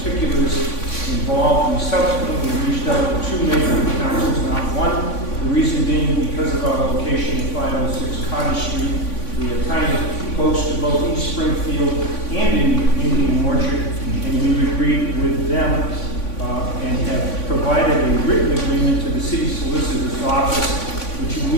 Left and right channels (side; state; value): right; late; 3.5 ms